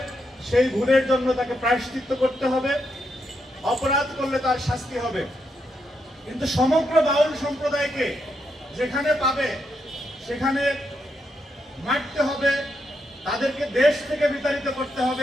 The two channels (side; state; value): both; normal; correlation 0.81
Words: সেই ভুলের জন্য তাকে প্রায়শ্চিত্ত করতে হবে, অপরাধ করলে তার শাস্তি হবে। কিন্তু সমগ্র বাউল সম্প্রদায়কে যেখানে পাবে সেখানে মারতে হবে, তাদেরকে দেশ থেকে বিতাড়িত করতে